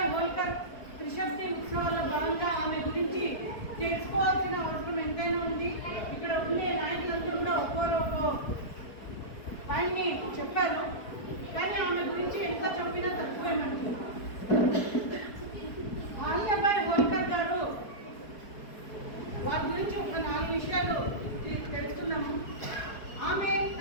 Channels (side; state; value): right; late; 4.6 ms